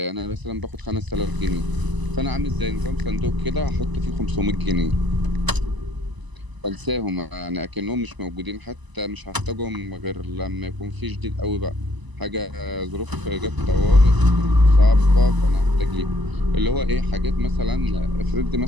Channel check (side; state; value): left; late; 1.0 ms